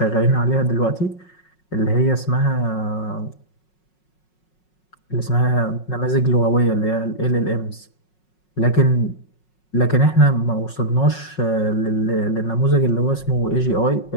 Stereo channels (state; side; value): late; right; 5.5 ms